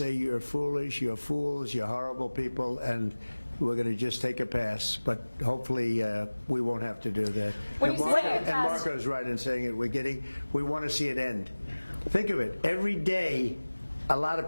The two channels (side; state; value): both; inverted; correlation -1.00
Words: you're foolish, you're fools, you're horrible people, and we're going to just take a pass. But hopefully we won't have to do that. And Marco's right in saying it. We want to see it end. Think of it. Every day, a lot of